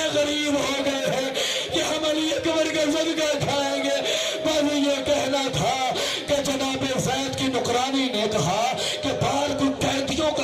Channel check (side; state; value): both; identical; correlation 1.00